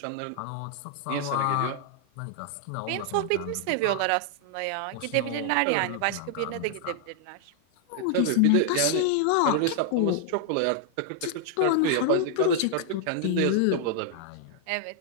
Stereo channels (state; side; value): different; both; correlation 0.00